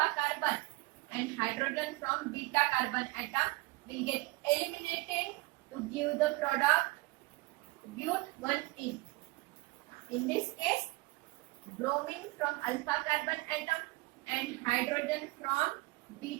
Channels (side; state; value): left; quieter; 23.2 dB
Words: carbon and hydrogen from beta carbon atom will get eliminated to give the product but 1-in. In this case, bromine from alpha carbon atom and hydrogen from